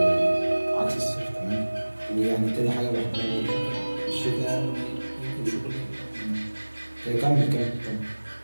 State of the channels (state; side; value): inverted; both; correlation -1.00